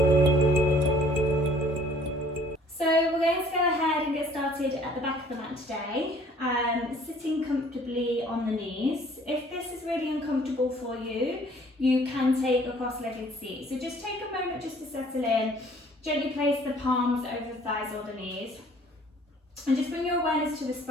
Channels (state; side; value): normal; both; correlation 0.56